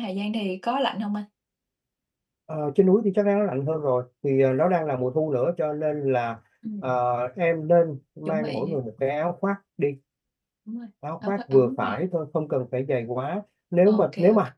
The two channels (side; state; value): both; identical; correlation 1.00